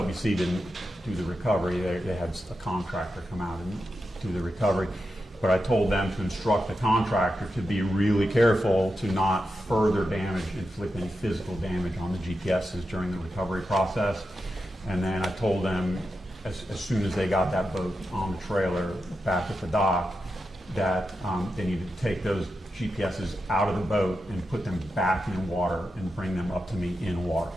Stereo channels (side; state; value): both; normal; correlation 0.88